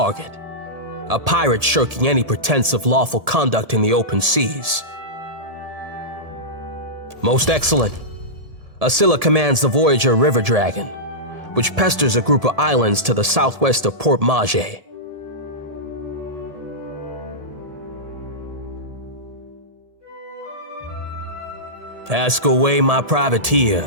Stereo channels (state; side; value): late; left; 1.7 ms